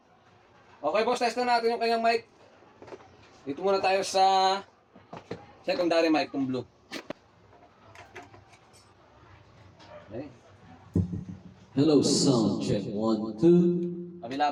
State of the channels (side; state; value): both; identical; correlation 1.00